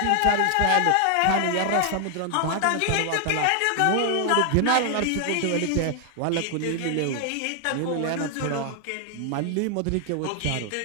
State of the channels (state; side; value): different; both; correlation 0.00